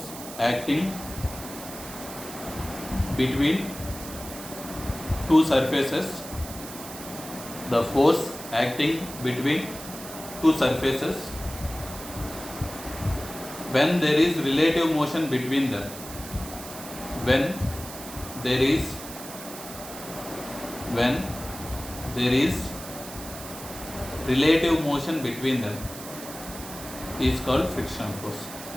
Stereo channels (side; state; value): right; noise; hiss, 12 dB below the sound